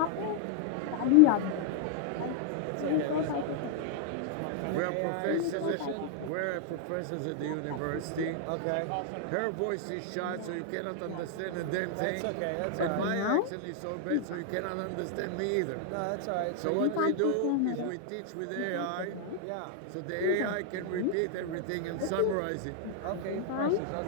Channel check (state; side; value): different; both; correlation 0.00